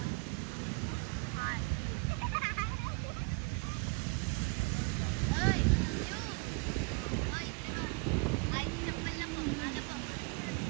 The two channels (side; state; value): left; quieter; 30.8 dB